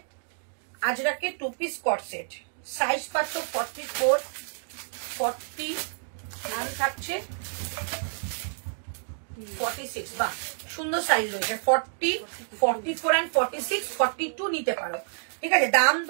আজরাকের 2 পিস কট সেট, সাইজ পাচ্ছ 44 40 এন্ড থাকছে 46। বাহ, সুন্দর সাইজ রয়েছে। 40 44 এন্ড 46 42 নিতে পারো, ঠিক আছে। দাম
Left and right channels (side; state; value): left; silent; digital silence